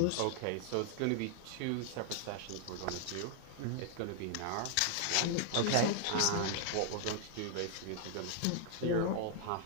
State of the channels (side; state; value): both; different; correlation 0.00